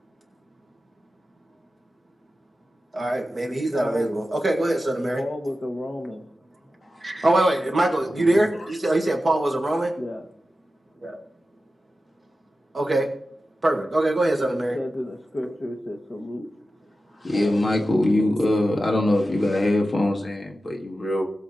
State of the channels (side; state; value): both; normal; correlation 0.93